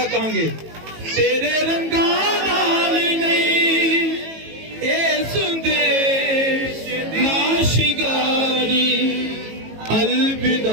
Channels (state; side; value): late; left; 18 ms